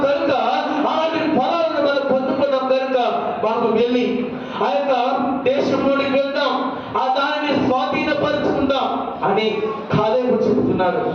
కనుక, అలాంటి ఫలాలను మనం పొందుకున్నాం కనుక మనం వెళ్ళి ఆ యొక్క దేశంలోనికి వెళ్దాం, ఆ దానిని స్వాధీనపరుచుకుందాం అని కాలేబు చెబుతున్నాడు.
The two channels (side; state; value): both; identical; correlation 1.00